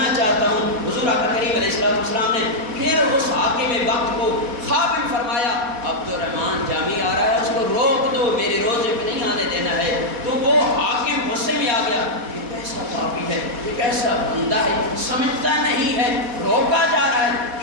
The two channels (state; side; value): late; left; 4.1 ms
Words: چاہتا ہوں. حضور آقا کریم علیہ السلام نے پھر اس حاکم وقت کو خواب میں فرمایا عبد الرحمن جامی آ رہا ہے, اس کو روک دو, میرے روزے پہ نہیں آنے دینا ہے. تو وہ حاکم غصے میں آ گیا, یہ کیسا پاپی ہے, یہ کیسا بندہ ہے, سمجھتا نہیں ہے, روکا جا رہا ہے